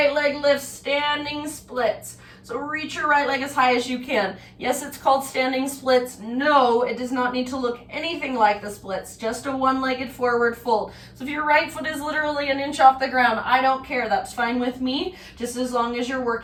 leg lifts, standing splits. So reach your right leg as high as you can. Yes, it's called standing splits. No, it does not need to look anything like the splits, just a one-legged forward fold. So if your right foot is literally an inch off the ground, I don't care, that's fine with me, just as long as you're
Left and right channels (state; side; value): identical; both; correlation 1.00